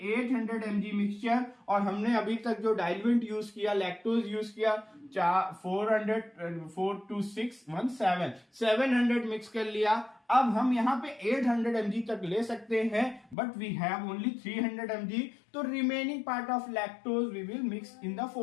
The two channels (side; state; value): right; drops out; at 13.4 s